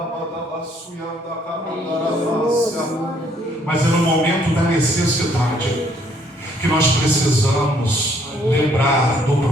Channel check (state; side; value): normal; both; correlation 0.66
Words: Mas é no momento da necessidade que nós precisamos lembrar do